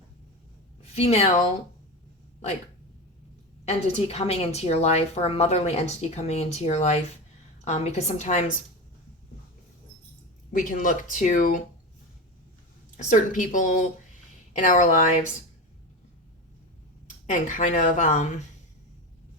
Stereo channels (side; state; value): both; normal; correlation 0.22